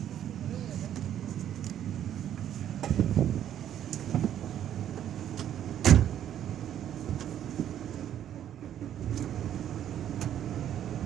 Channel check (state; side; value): quieter; left; 10.6 dB